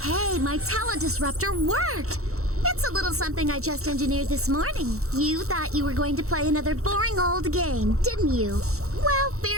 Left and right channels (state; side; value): late; left; 0.64 ms